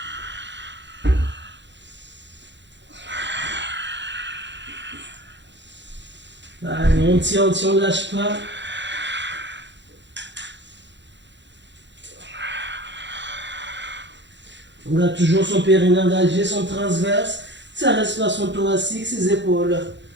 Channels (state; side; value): late; left; 0.52 ms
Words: Allez, on tient, on ne lâche pas. On garde toujours son périnée engagé, son transverse, sa respiration thoracique, ses épaules